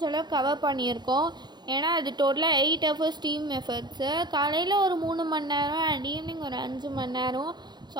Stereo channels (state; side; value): late; left; 0.21 ms